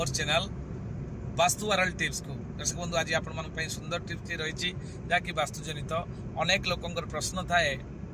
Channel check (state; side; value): identical; both; correlation 1.00